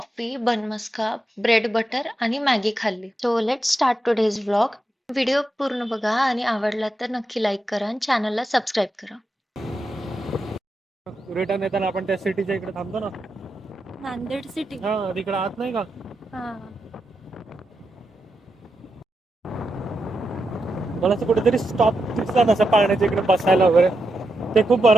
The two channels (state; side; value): normal; both; correlation 0.87